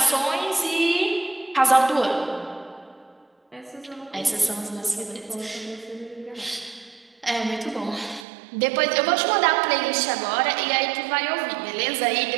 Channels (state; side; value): drops out; left; at 8.2 s